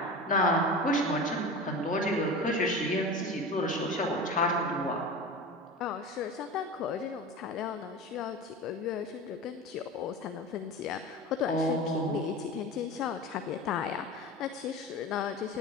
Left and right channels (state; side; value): normal; both; correlation 0.31